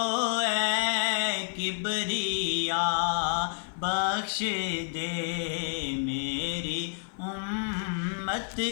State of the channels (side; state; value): right; silent; 58 dB below the other